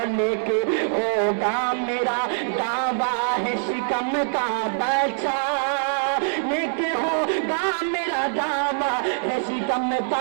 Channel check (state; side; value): silent; left; 63 dB below the other